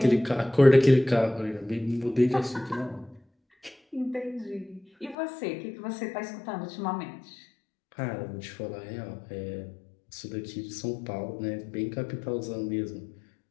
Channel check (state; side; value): drops out; right; at 5.2 s